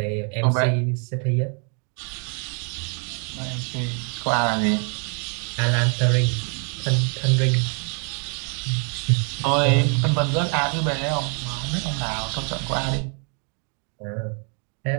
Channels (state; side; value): quieter; left; 38.6 dB